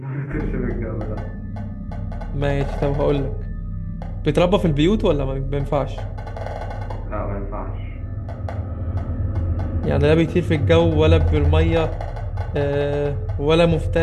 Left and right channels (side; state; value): both; identical; correlation 1.00